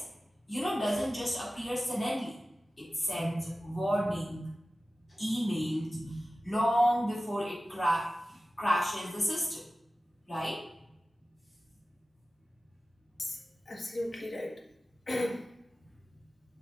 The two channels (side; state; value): both; normal; correlation 0.96